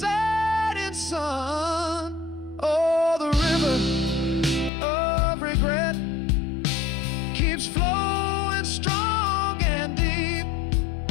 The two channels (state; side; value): drops out; right; at 4.7 s